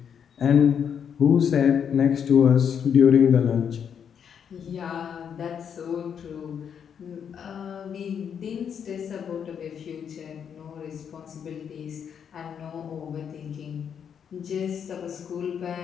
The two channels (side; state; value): right; quieter; 7.8 dB